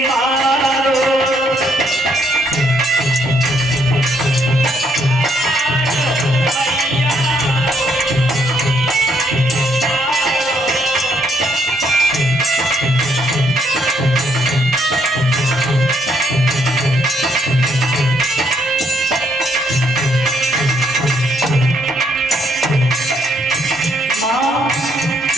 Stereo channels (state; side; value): normal; both; correlation 0.71